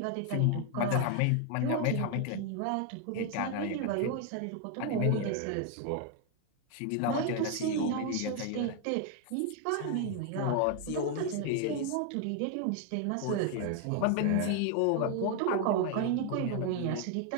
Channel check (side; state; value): both; different; correlation 0.01